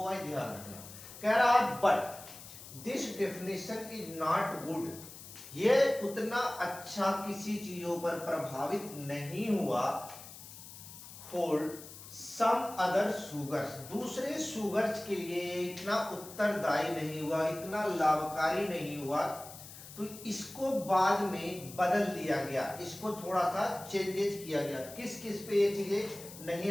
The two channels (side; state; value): left; noise; hiss, 15 dB below the sound